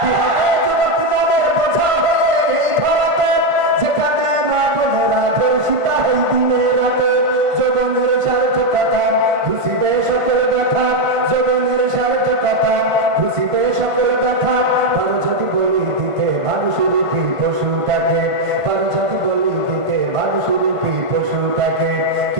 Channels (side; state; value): left; late; 1.5 ms